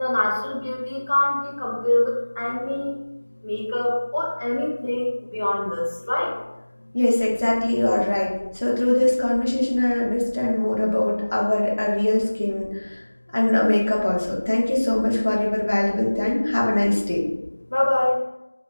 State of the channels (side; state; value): both; inverted; correlation -1.00